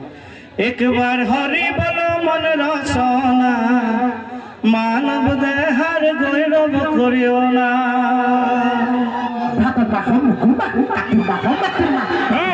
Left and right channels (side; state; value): both; identical; correlation 1.00